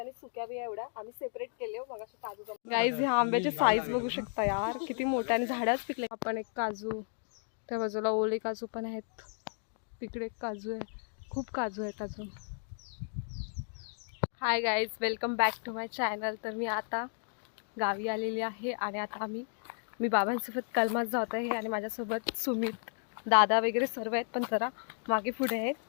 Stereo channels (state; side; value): silent; right; 55 dB below the other